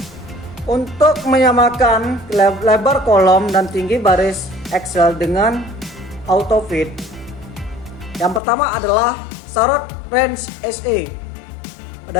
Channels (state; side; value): drops out; right; at 8.4 s